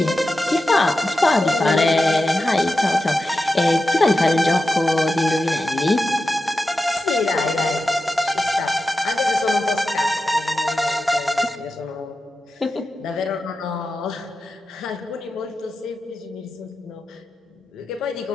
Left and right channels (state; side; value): normal; both; correlation 0.92